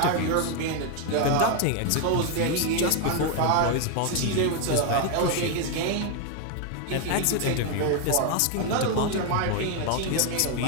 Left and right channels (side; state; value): both; different; correlation 0.01